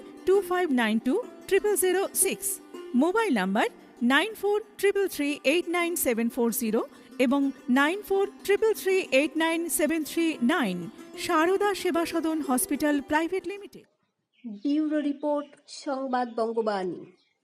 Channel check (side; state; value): both; identical; correlation 1.00